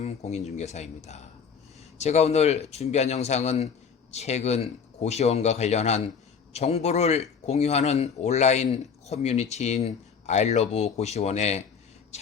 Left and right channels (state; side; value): quieter; right; 6.4 dB